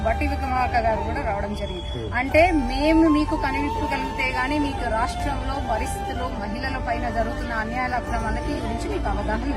బట్టి విక్రమార్క గారు కూడా రావడం జరిగింది. అంటే మేము మీకు కనివిప్పగలిగితే గానీ మీకు రాష్ట్రంలో పరిస్థితులు మహిళల పైన జరుగుతున్న అన్యాయాల అక్రమాలకి గురించి మీకు అవగాహన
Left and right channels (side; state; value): both; identical; correlation 1.00